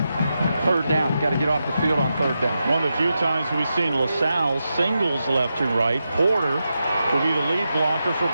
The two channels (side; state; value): both; inverted; correlation -0.88